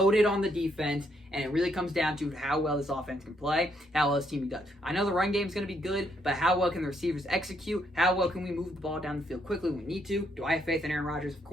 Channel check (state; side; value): normal; both; correlation 0.73